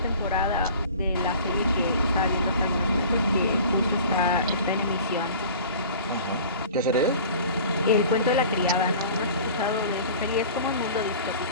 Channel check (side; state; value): both; inverted; correlation -0.44